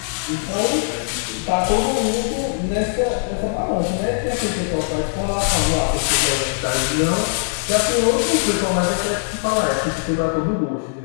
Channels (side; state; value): right; silent; digital silence